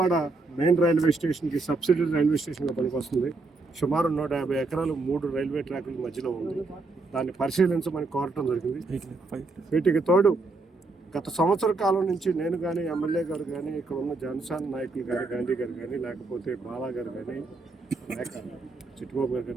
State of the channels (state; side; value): quieter; left; 3.5 dB